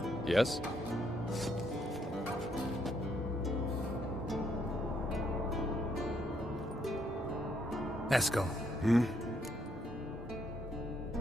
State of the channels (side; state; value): both; normal; correlation 0.73